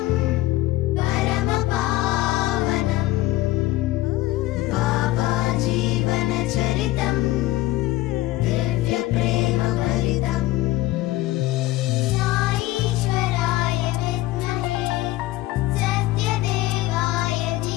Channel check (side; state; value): right; quieter; 17.2 dB